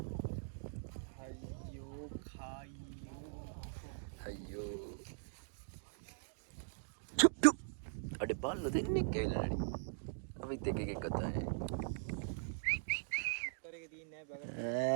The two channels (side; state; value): left; silent; digital silence